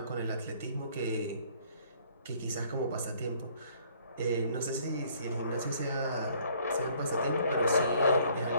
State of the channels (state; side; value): inverted; both; correlation -0.60